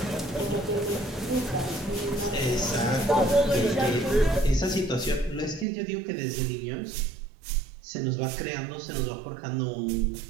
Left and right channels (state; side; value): drops out; left; at 5.7 s